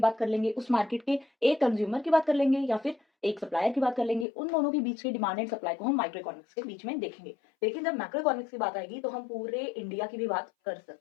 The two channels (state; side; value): drops out; right; at 4.2 s